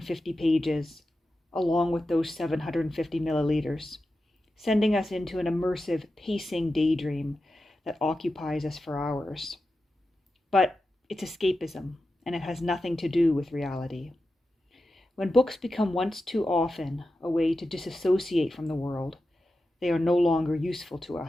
pages, along with those 750 milliliters, sending us into an immersive, pacing daydream that occupies us for hours. But it's escapism, and it has nothing to do with reality. When books become once too often a way to disassociate from the world, they are no longer useful to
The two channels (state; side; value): normal; both; correlation 0.91